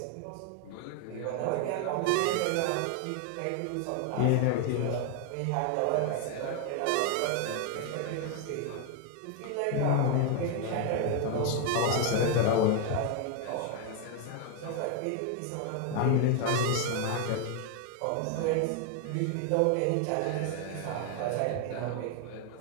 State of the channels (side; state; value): both; different; correlation 0.01